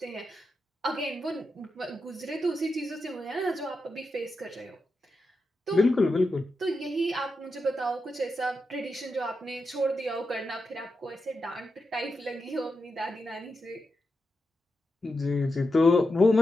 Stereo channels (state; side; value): normal; both; correlation 0.88